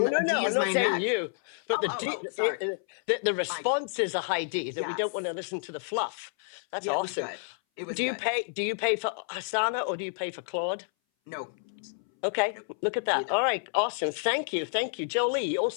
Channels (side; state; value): right; silent; 58 dB below the other